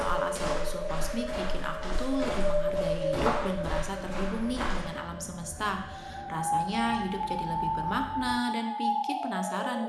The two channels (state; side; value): identical; both; correlation 1.00